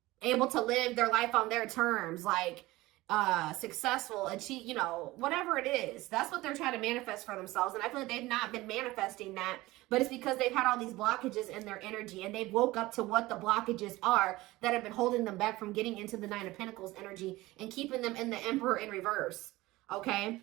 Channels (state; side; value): quieter; left; 19.0 dB